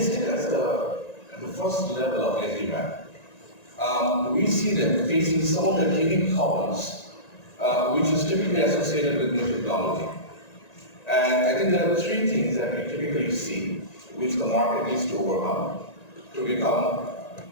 at the first level of SD-WAN. We see them facing some of the unique problems, which is typically associated with new technology. And I think there are three things that we typically see which the market needs to overcome to become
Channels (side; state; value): right; late; 1.9 ms